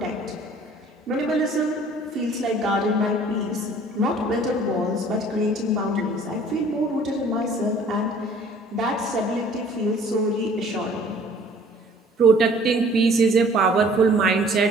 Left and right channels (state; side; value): normal; both; correlation 0.53